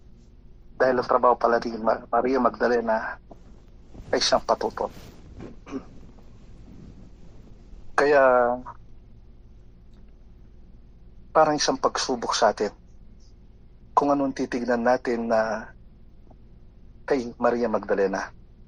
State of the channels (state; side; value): identical; both; correlation 1.00